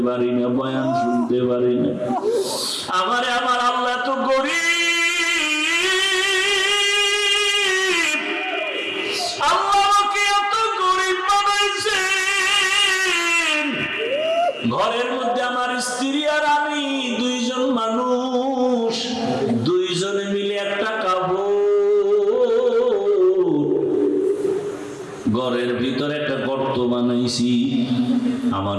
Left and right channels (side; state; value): both; identical; correlation 1.00